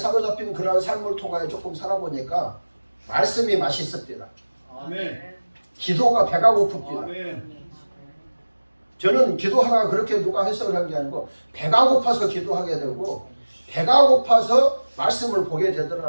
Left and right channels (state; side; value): inverted; both; correlation -1.00